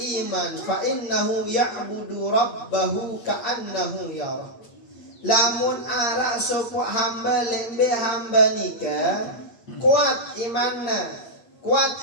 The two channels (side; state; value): right; late; 8.5 ms